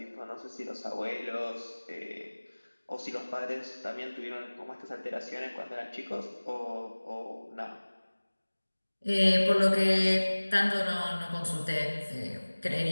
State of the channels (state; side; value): inverted; both; correlation -1.00